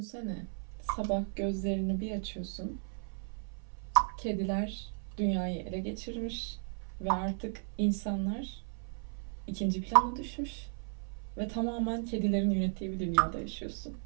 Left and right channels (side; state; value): left; silent; 55 dB below the other